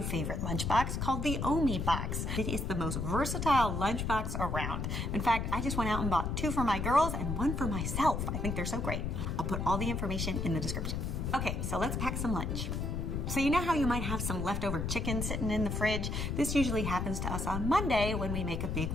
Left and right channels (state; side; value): noise; left; rumble, 2 dB below the sound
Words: favorite lunchbox called the Omi box. It is the most versatile lunchbox around. In fact, I just went out and bought 2 for my girls and 1 for myself. I think they're so great. I'll put all the information in the description. Okay, so let's pack some lunch. So you know how you might have some leftover chicken sitting in the fridge? This usually happens to us on Monday when we make a big